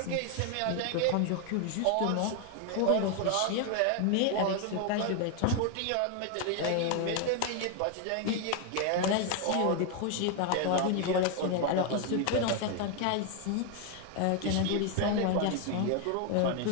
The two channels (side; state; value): both; different; correlation 0.01